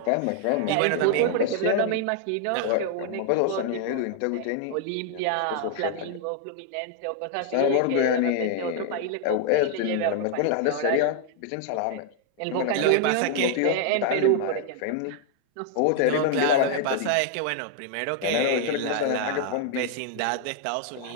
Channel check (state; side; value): different; both; correlation 0.00